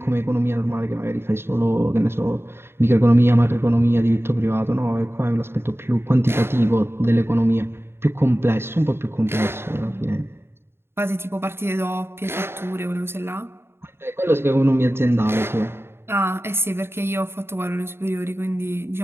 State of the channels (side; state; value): left; late; 0.12 ms